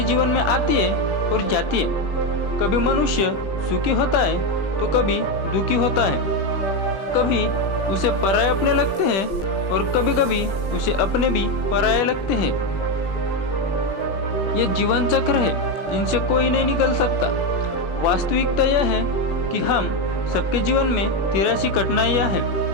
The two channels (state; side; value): late; right; 21 ms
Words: जीवन में आती है और जाती है। कभी मनुष्य सुखी होता है तो कभी दुखी होता है, कभी उसे पराये अपने लगते हैं और कभी कभी उसे अपने भी पराये लगते हैं। ये जीवन चक्र है, इनसे कोई नहीं निकल सकता। वास्तविकता यह है कि हम सबके जीवन में 83 कठिनाइयाँ हैं।